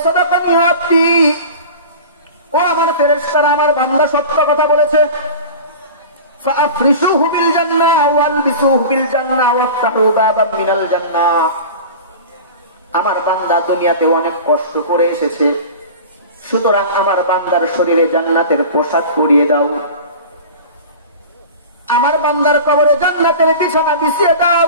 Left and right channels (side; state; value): both; inverted; correlation -0.35